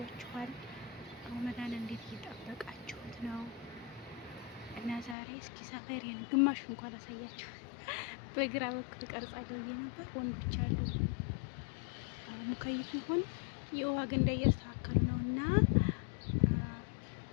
ረመዳን እንዴት እየጠበቃችሁት ነው? እና ዛሬ እስኪ ሰፈሬን ግማሽ እንኳን አሳያችሁ። በግራ በኩል ቀርጻለሁ ብዬ ነበር። ወንዶች አሉ ሙከይፍ ይሁን የውሃ ገንዳ እያስተካከሉ ነው እና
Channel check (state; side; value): drops out; right; at 5.2 s